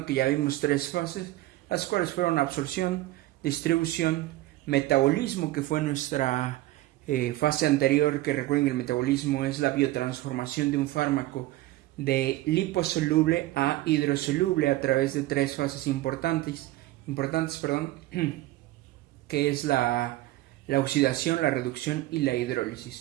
que ya vimos 3 fases, las cuales fueron absorción, distribución, metabolismo, que fue nuestra fase anterior, que recuerden que el metabolismo es la biotransformación de un fármaco de liposoluble a hidrosoluble a través de 3 fases importantes, que es la oxidación, la reducción y la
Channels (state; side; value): quieter; left; 16.9 dB